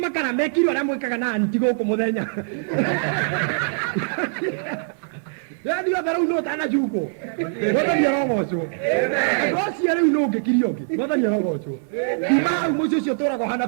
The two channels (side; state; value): left; silent; 63 dB below the other